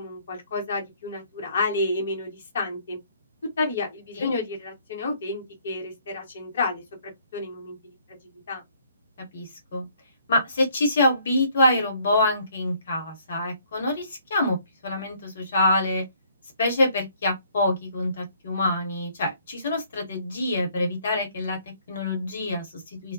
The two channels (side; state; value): both; inverted; correlation -0.63